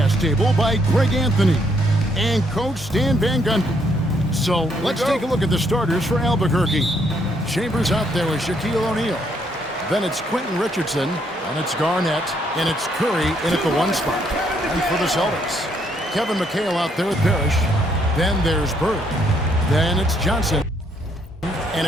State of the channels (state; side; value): normal; both; correlation 0.71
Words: table by Greg Anthony and Coach Stan Van Gundy. So let's take a look at the starters for Albuquerque. Chambers out there with Shaquille O'Neal. Then it's Quentin Richardson, and it's Garnett, and it's Curry in at the one spot. And for the Celtics, Kevin McHale out there with Parrish. Then there's Bird. Then it's Johnson, and